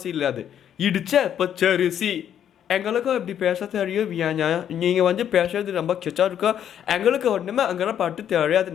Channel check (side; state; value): right; quieter; 9.6 dB